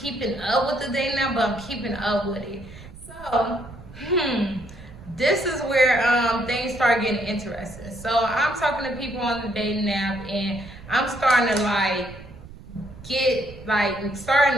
keeping up with the dating now, but I'm keeping up with it. So, this is where things start getting interesting. So I'm talking to people on the dating app, and I'm starting to get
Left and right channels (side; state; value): right; noise; rumble, 17 dB below the sound